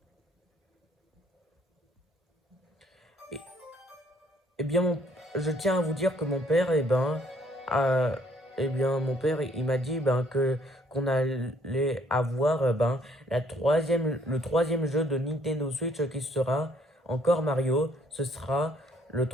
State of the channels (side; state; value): both; normal; correlation 0.64